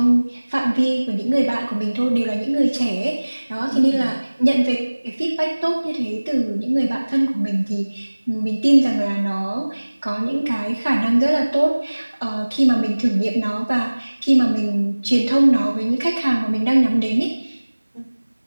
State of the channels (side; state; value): both; inverted; correlation -1.00